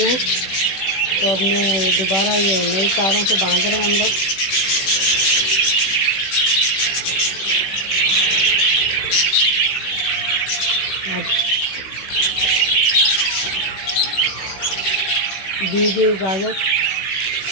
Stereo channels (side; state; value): right; late; 16 ms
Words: तो अब मैं दोबारा ये नई तारों से बांध रहे हैं हम लोग। दीजिए इजाज़त,